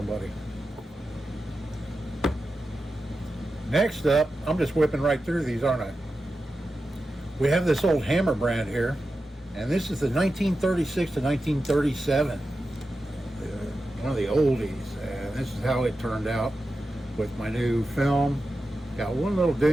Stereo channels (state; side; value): normal; both; correlation 0.91